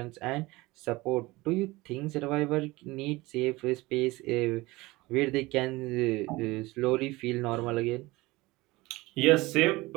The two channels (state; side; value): quieter; left; 21.0 dB